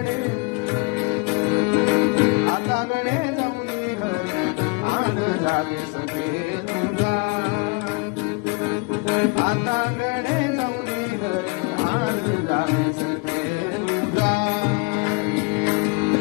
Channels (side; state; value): right; quieter; 29.1 dB